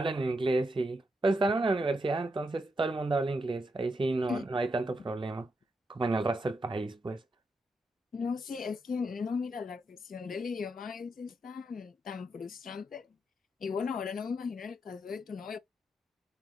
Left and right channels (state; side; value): normal; both; correlation 0.82